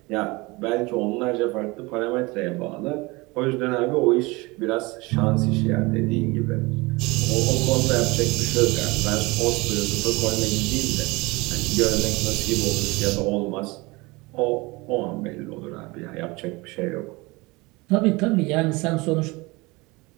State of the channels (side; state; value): left; quieter; 24.1 dB